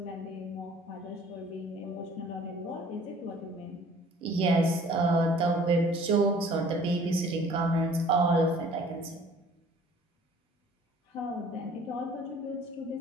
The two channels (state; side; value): normal; both; correlation 0.52